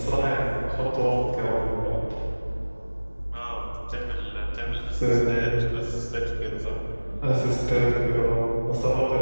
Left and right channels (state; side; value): inverted; both; correlation -1.00